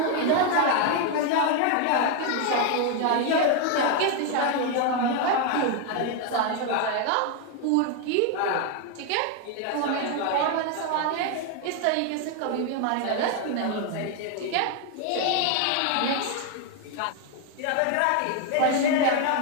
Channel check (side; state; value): both; different; correlation 0.01